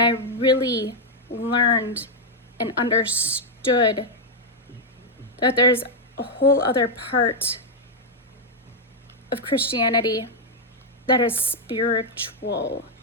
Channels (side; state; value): both; normal; correlation 0.00